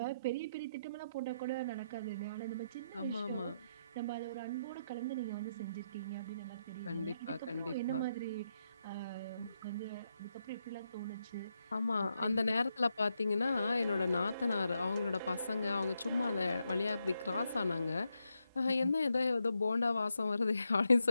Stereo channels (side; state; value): both; inverted; correlation -0.82